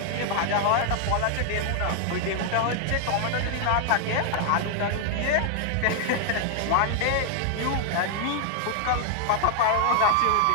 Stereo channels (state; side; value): different; both; correlation 0.00